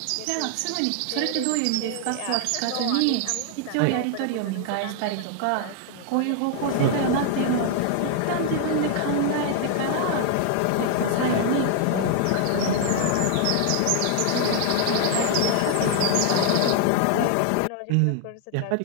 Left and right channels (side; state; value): both; different; correlation 0.00